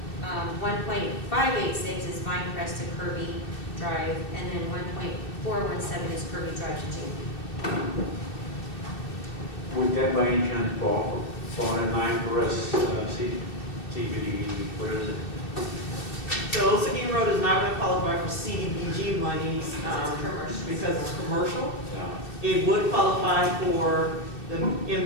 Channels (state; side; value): late; right; 2.7 ms